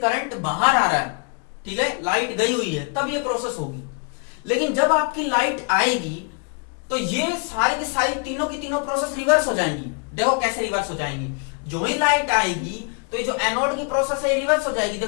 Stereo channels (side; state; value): right; quieter; 37.0 dB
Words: बाहर आ रहा है। ठीक है, लाइट गई हुई है तब ये प्रोसेस होगी। लेकिन जब आपकी लाइट आएगी तो ये सारी की सारी तीनों की तीनों प्रोसेस रिवर्स हो जाएंगी। देखो कैसे रिवर्स हो जाएंगी, जो ही लाइट आएगी तो ये जो एनोड की प्रोसेस है रिवर्स हो जाएगी।